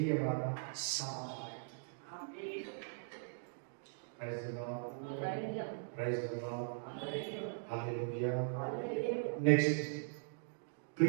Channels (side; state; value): left; silent; digital silence